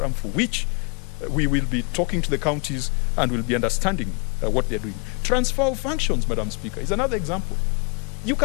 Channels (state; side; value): quieter; right; 33.0 dB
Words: for which we will be talking to the counties and will be understanding what they're doing. Transfer of functions, Madam Speaker, is another example. You